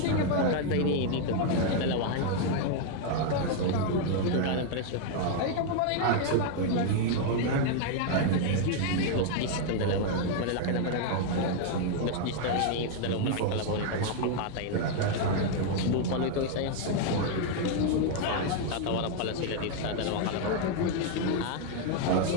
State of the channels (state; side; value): different; both; correlation 0.00